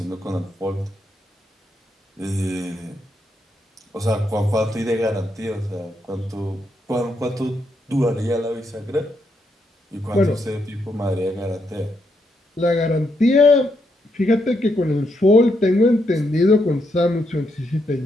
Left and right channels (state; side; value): normal; both; correlation 0.79